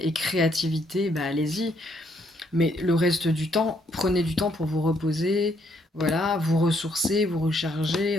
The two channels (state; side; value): normal; both; correlation 0.71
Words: créativité, bah allez-y. Mais le reste du temps, prenez du temps pour vous reposer, voilà, vous ressourcer, vous